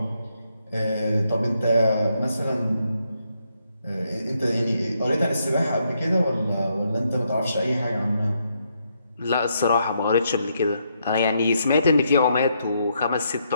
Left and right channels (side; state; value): both; inverted; correlation -0.77